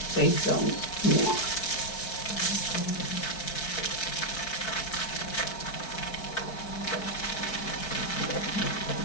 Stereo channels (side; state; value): right; late; 4.6 ms